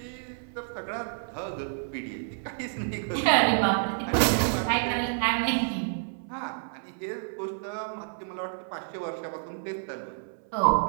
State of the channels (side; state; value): left; silent; 58 dB below the other